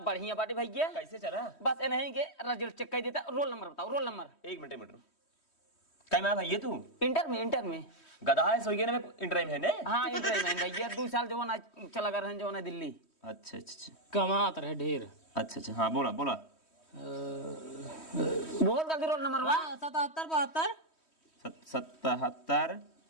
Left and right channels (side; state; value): right; late; 3.1 ms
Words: बढ़िया बाटे भैया कैसे चला? बस नहीं के रिजल्ट चेक कर देता। रोल नंबर बताओ रोल नंबर। एक मिनट क्या मैं भैया तू इंटर में गधा है सोइए ना इंटर में है ने। हाँ इंटर में भैया 2 साल जो ना चला कर जो ना दिल्ली। अच्छा कमात रहे ढेर। अच्छा हाँ बोला बहुत जल्दी रोल नंबर 77 77